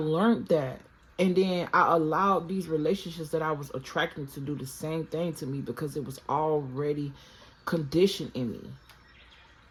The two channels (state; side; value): identical; both; correlation 1.00